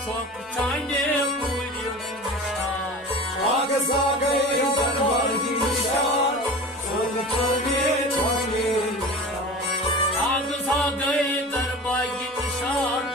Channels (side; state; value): both; normal; correlation 0.34